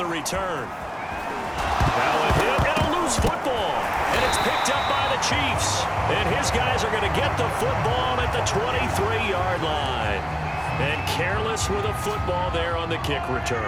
return. Now a hit and a loose football, and it's picked up by the Chiefs, and his guys are going to get the football at the 23-yard line. And careless with a football there on the kick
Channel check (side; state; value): both; identical; correlation 1.00